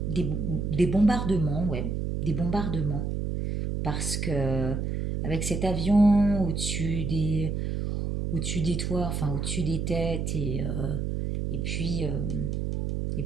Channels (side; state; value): right; noise; hum, 2 dB below the sound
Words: des bombardements, ouais, des bombardements. Parce que avec cet avion au-dessus des toits, enfin au-dessus des têtes, et puis, euh, et